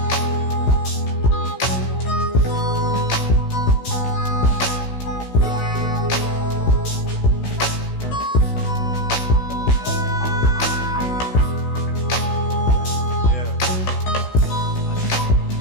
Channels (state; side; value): late; right; 16 ms